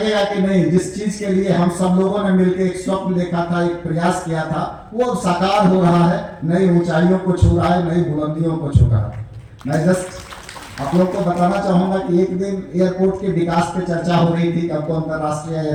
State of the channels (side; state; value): both; identical; correlation 1.00